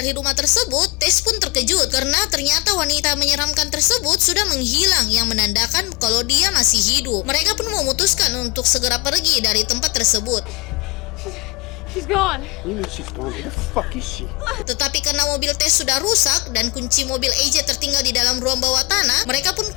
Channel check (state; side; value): quieter; right; 24.5 dB